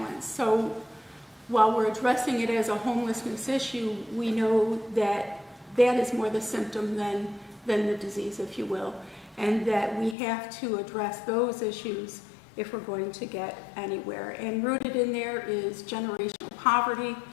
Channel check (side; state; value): right; drops out; at 10.2 s